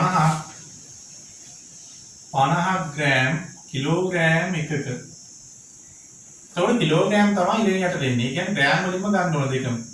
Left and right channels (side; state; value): both; identical; correlation 1.00